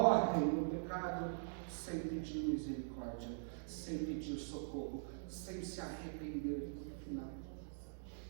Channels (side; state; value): left; silent; digital silence